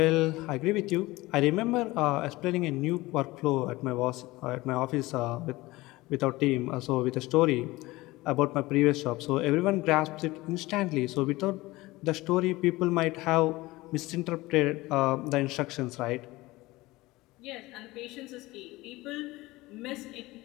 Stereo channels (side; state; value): right; quieter; 19.9 dB